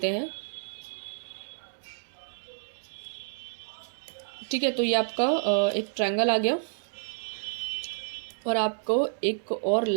हैं। ठीक है, तो ये आपका एक ट्रायंगल आ गया और आपको एक और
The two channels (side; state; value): left; silent; digital silence